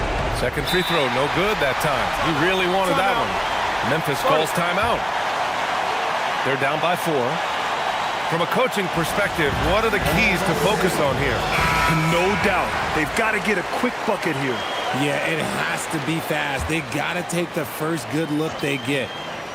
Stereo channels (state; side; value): identical; both; correlation 1.00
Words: Second free throw, no good that time. He really wanted that one. Memphis calls timeout. They're down by 4. From a coaching perspective, what are the keys to focus on here? No doubt. They've got to get a quick bucket here. Yeah, it has to be fast. They got to take the first good look they get.